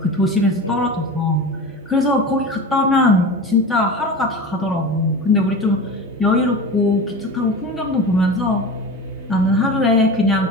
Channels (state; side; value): normal; both; correlation 0.30